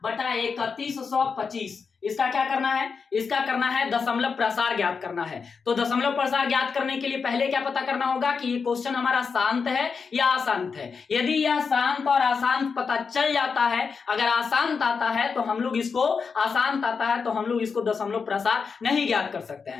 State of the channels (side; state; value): right; quieter; 5.4 dB